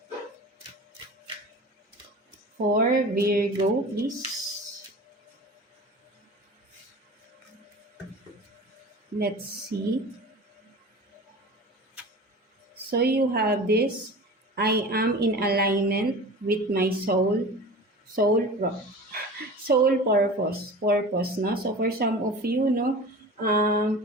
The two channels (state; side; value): normal; both; correlation 0.36